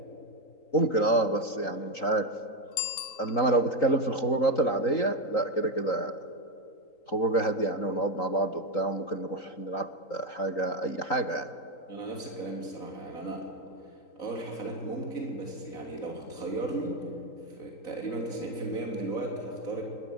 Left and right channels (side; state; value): right; late; 3.9 ms